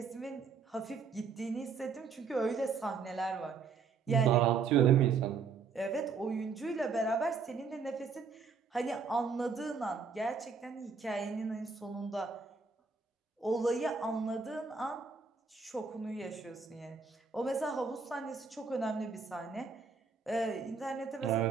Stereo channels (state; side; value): quieter; left; 5.3 dB